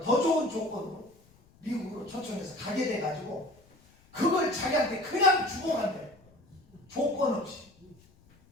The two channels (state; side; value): noise; left; rumble, 29 dB below the sound